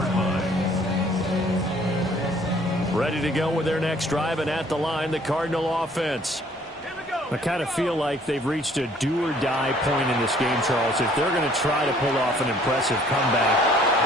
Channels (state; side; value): normal; both; correlation 0.58